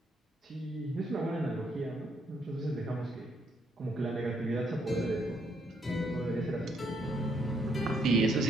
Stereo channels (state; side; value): normal; both; correlation 0.72